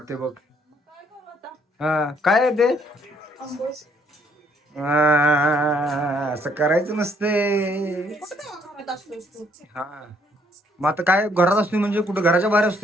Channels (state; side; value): normal; both; correlation 0.67